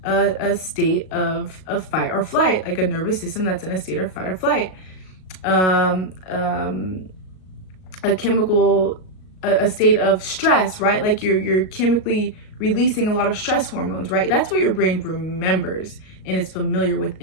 a state of fight or flight, like a nervous system that's in a state of fight or flight. A state of stress, right? Like you're chemically releasing a lot of stress hormones, right? That's what your brain remembers and is familiar with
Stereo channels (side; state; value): right; late; 38 ms